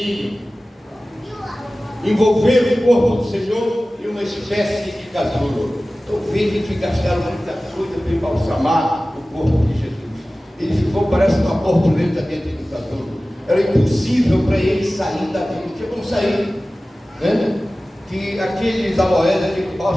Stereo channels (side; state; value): both; normal; correlation 0.97